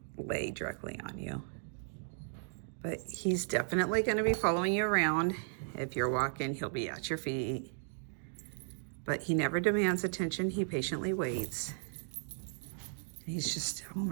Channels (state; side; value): silent; left; digital silence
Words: lay directly on you. But he's definitely going to be following you around. If you're walking, he'll be at your feet. But he never demands attention. He patiently waits. He's just, oh